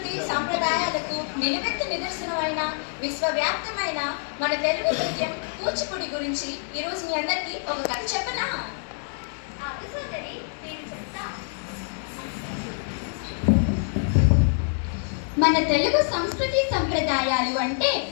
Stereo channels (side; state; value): right; silent; digital silence